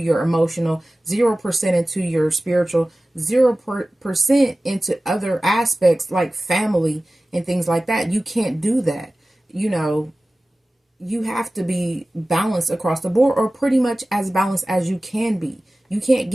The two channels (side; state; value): both; normal; correlation 0.97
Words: emotional, 0% into your spiritual, 0% into other aspects like family and things like that. You can't do that. You know, you have to be balanced across the board, or pretty much as balanced as you can be. You can't